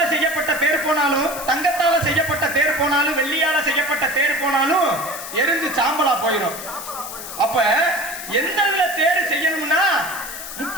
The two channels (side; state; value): left; noise; hiss, 10 dB below the sound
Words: செய்யப்பட்ட தேர் போனாலும், தங்கத்தால செய்யப்பட்ட தேர் போனாலும், வெள்ளியால செய்யப்பட்ட தேர் போனாலும் எரிஞ்சு சாம்பலா போயிடும். அப்ப எந்த இதுல தேர் செய்யணும்னா